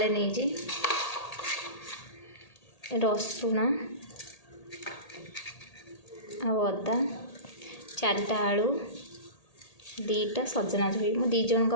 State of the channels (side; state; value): right; late; 1.8 ms